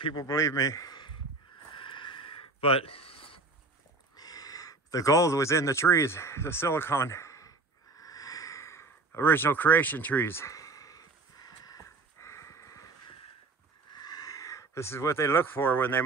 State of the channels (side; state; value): left; quieter; 3.7 dB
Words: believe me. But the gold was in the trees, the silicon, original creation trees. This is what they look for when they